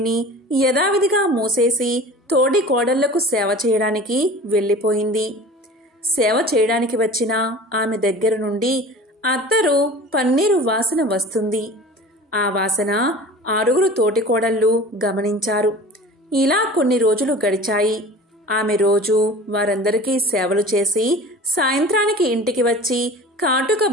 యథావిధిగా మూసేసి తోడి కోడళ్లకు సేవ చేయడానికి వెళ్ళిపోయింది. సేవ చేయడానికి వచ్చిన ఆమె దగ్గర నుండి అత్తరు, పన్నీరు వాసన వస్తుంది. ఆ వాసన 6 తోటికోడళ్ళు గమనించారు. ఇలా కొన్ని రోజులు గడిచాయి. ఆమె రోజు వారందరికీ సేవలు చేసి సాయంత్రానికి ఇంటికి వచ్చి కాటుక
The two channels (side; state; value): both; normal; correlation 0.40